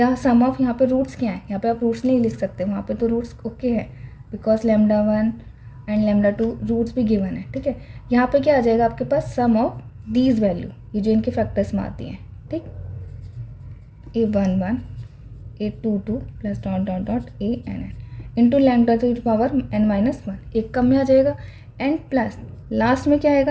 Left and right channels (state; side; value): identical; both; correlation 1.00